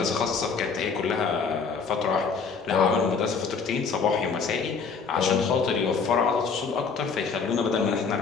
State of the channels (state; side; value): quieter; right; 5.3 dB